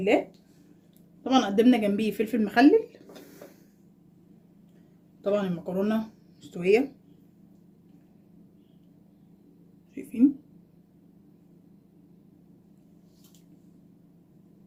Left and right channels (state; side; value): identical; both; correlation 1.00